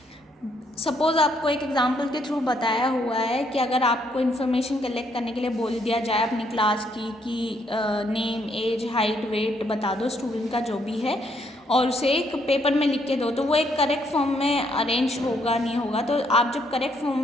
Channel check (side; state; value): both; normal; correlation 0.71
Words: Suppose आपको एक example के through बताया हुआ है कि अगर आपको information collect करने के लिए बोल दिया जाए अपनी क्लास की कि नेम, एज, हाइट, वेट बता दो स्टूडेंट का जो भी है और उसे एक पेपर में लिख के दो, तो वो एक करेक्ट फॉर्म में अरेंज होगा नहीं होगा। तो आप जब करेक्ट फॉर्म